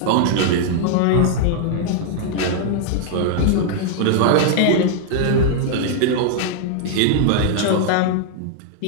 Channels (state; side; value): different; both; correlation -0.01